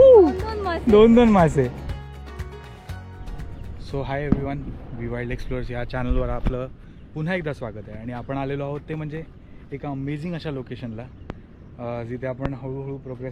दोन मासे. So hi everyone, we wild explorers या चॅनलवर आपलं पुन्हा एकदा स्वागत आहे. आणि आपण आलेलो आहोत ते म्हणजे एका अमेझिंग अशा लोकेशनला, जिथे आपण हळूहळू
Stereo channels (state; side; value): identical; both; correlation 1.00